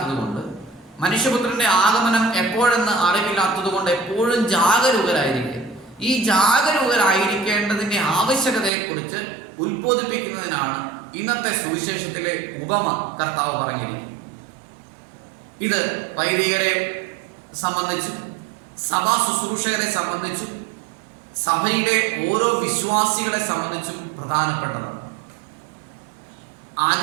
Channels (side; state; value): left; drops out; at 8.7 s